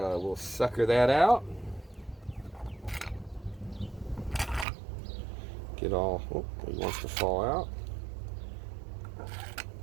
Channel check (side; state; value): left; drops out; at 4.7 s